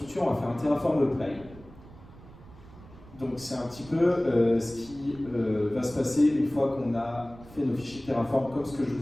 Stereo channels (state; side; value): noise; right; rumble, 20 dB below the sound